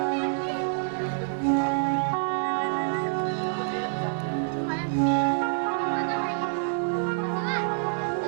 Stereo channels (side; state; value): left; silent; digital silence